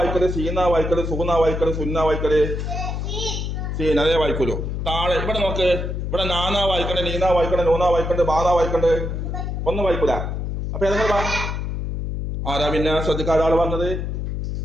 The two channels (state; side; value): noise; left; hum, 3 dB below the sound